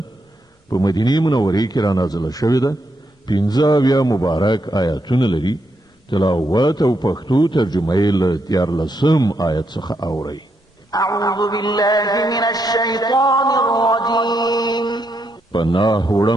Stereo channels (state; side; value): normal; both; correlation 0.80